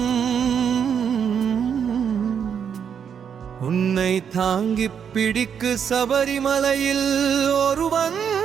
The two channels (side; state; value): left; quieter; 7.6 dB